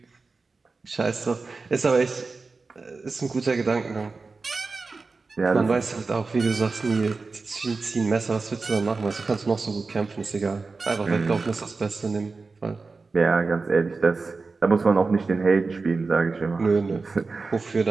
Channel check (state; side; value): quieter; left; 4.1 dB